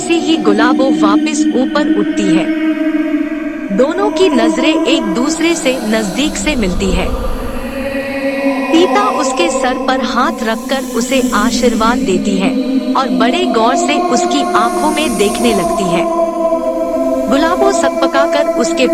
ही गुलाबो वापस ऊपर उठती है, दोनों की नजरें एक दूसरे से नजदीक से मिलती है। तीता उसके सर पर हाथ रखकर उसे आशीर्वाद देती है और बड़े गौर से उसकी आंखों में देखने लगती है। गुलाबो सकपकाकर उसके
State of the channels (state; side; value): identical; both; correlation 1.00